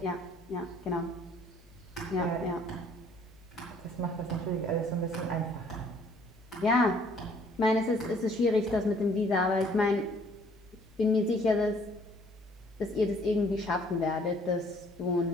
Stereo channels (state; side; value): noise; left; hum, 25 dB below the sound